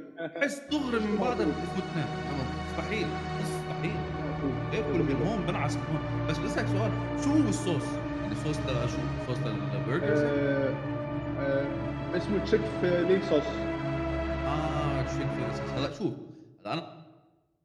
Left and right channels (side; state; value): both; identical; correlation 1.00